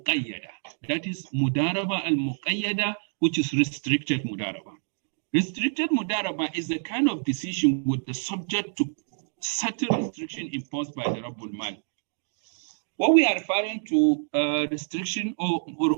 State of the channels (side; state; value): left; silent; digital silence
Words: That is Mudarabah al-Muqayyada, which is restricted Mudarabah. Restricted Mudarabah is the kind of decision with the subject to certain restriction imposed by the Rabbul Mal. What we are referring to restriction or